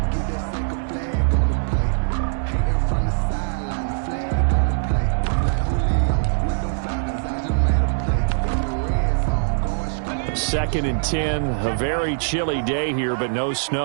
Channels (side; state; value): left; silent; digital silence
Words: Second and 10, a very chilly day here, but no